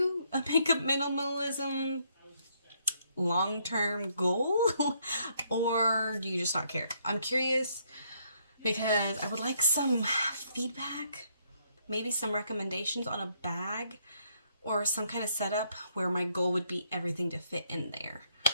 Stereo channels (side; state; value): both; inverted; correlation -0.71